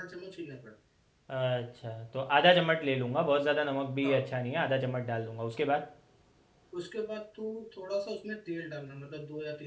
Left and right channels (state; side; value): identical; both; correlation 1.00